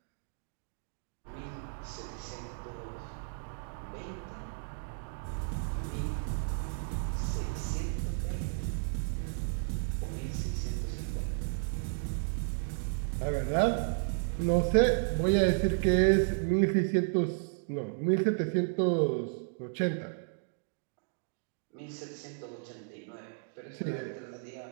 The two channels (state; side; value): silent; left; digital silence